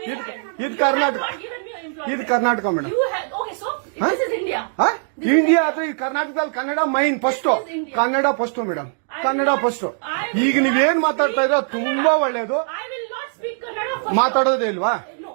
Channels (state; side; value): silent; left; digital silence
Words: ಇದು ಕರ್ನಾಟಕ, ಇದು ಕರ್ನಾಟಕ ಮೇಡಮ್. ಇಂಡಿಯಾ ಅಥವಾ ಈ ಕರ್ನಾಟಕದಲ್ಲಿ Kannada main first, Kannada first madam, Kannada first. ಈಗ ನೀವೇನ್ ಮಾತಾಡ್ತಾ ಇರೋ ತುಂಬಾ ಒಳ್ಳೇದು. ಮಾತಾಡೋದೇ ಇಲ್ವಾ?